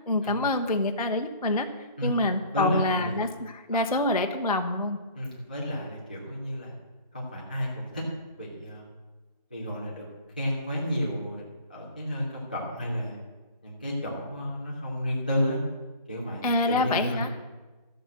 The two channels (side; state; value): both; inverted; correlation -0.45